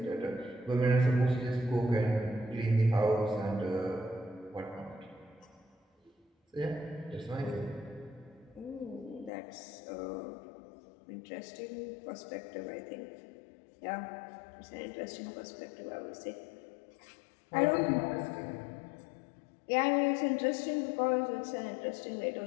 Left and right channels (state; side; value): drops out; right; at 9.3 s